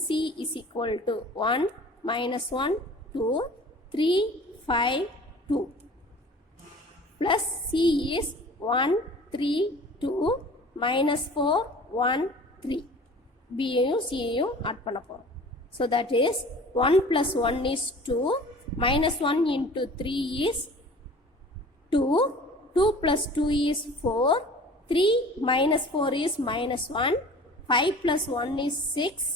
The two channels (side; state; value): both; normal; correlation 0.44